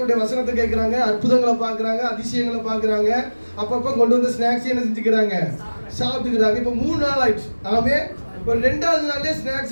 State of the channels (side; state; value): both; inverted; correlation -1.00